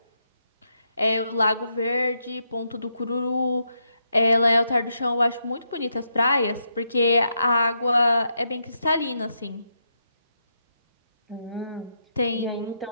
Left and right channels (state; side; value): inverted; both; correlation -0.81